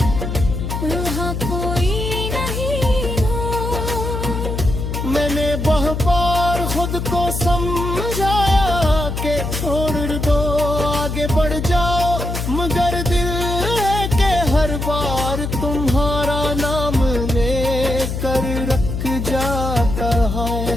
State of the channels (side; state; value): left; noise; hum, 3 dB below the sound